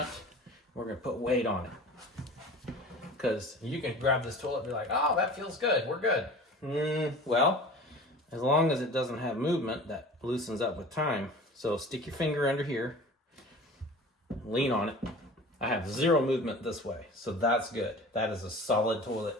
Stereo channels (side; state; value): both; normal; correlation 0.40